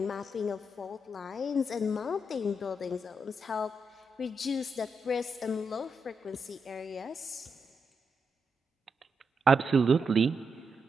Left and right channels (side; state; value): both; normal; correlation 0.83